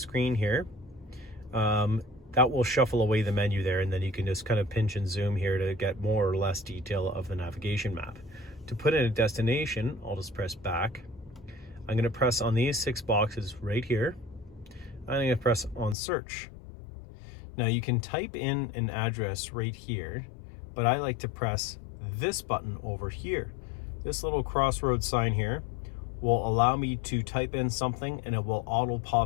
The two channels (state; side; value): drops out; right; at 16.0 s